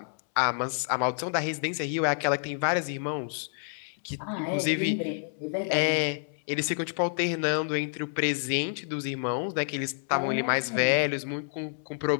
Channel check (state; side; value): silent; right; 59 dB below the other